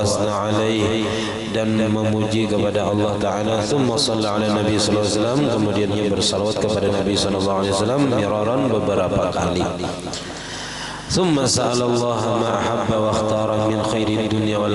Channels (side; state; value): both; identical; correlation 1.00